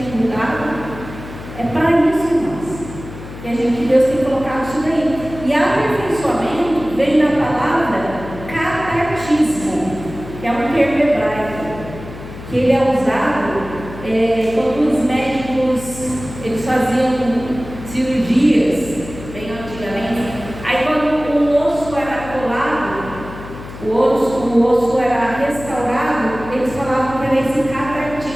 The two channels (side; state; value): left; noise; hum, 13 dB below the sound